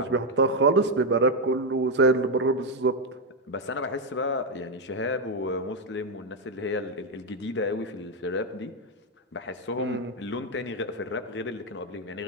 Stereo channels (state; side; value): normal; both; correlation 0.04